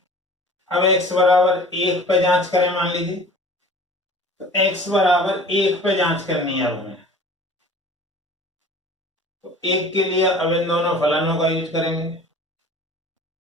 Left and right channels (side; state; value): both; normal; correlation 0.44